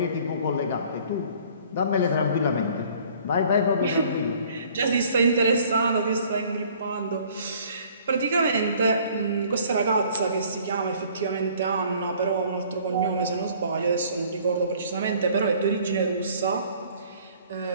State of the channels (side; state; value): both; inverted; correlation -0.55